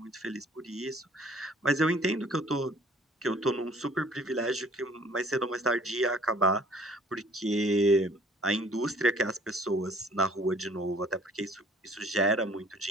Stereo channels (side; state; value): both; normal; correlation 0.55